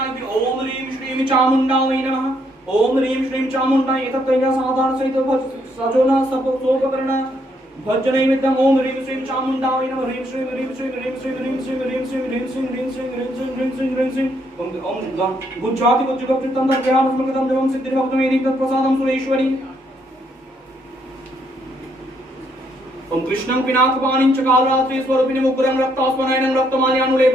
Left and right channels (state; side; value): normal; both; correlation 0.72